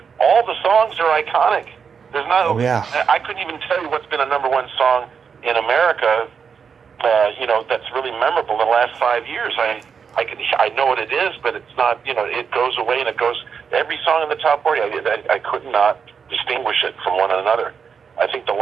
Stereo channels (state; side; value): quieter; left; 6.4 dB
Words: all the songs are iconic. There's not, I couldn't even tell you what's been a number one song in America, that's really memorable in the last 5 years. I know what it is, but it's not, it goes away and it goes, every song in the top 40, I could not distinguish it from one another. I think the